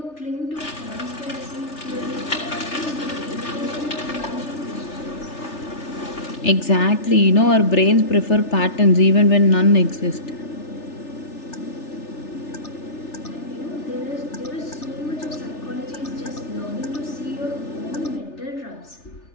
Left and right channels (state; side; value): late; right; 3.4 ms